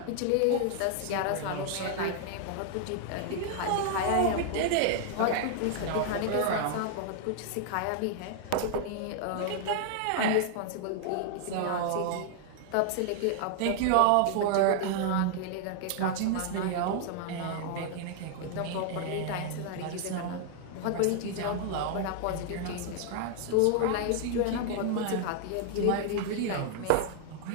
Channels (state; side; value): different; both; correlation 0.00